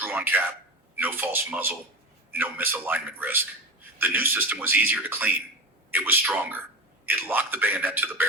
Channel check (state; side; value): normal; both; correlation 0.25